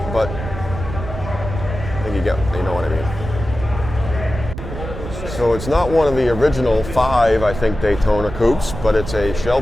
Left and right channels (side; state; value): right; noise; rumble, 9 dB below the sound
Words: but I think you know what I mean. So it's not one of the original 5, I think, Daytona coupes, but it's a